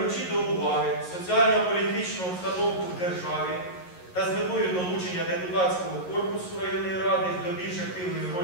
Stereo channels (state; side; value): late; right; 11 ms